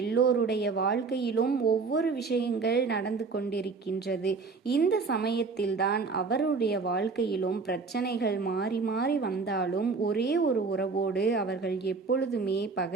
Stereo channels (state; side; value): quieter; left; 4.5 dB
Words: வாழ்க்கையிலும் ஒவ்வொரு விஷயங்கள் நடந்து கொண்டிருக்கின்றது. இந்த சமயத்தில்தான் அவருடைய வாழ்க்கையிலும் பிரச்சனைகள் மாறி மாறி வந்தாலும் ஒரே ஒரு உறவோடு அவர்கள் எப்பொழுதுமே